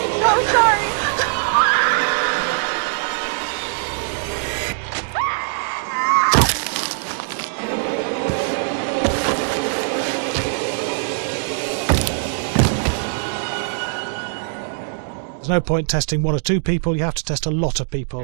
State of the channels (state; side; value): silent; left; digital silence